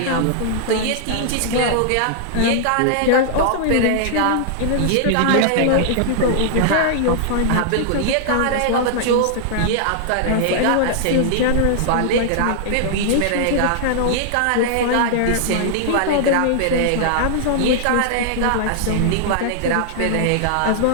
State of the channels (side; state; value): both; different; correlation -0.01